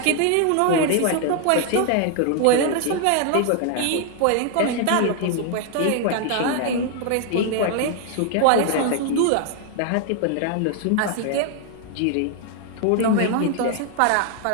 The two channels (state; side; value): different; both; correlation 0.00